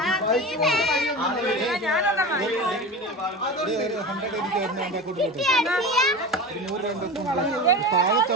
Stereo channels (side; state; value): both; normal; correlation 0.29